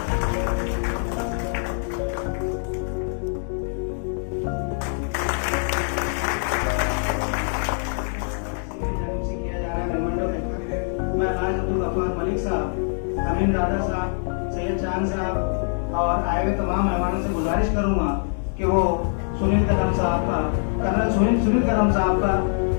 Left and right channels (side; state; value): right; silent; 63 dB below the other